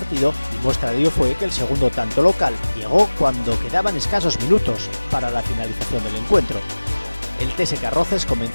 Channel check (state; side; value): inverted; both; correlation -1.00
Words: y muestra de ello fue que el segundo tanto local llegó cuando quedaban escasos minutos para la finalización del encuentro. El TSK Roces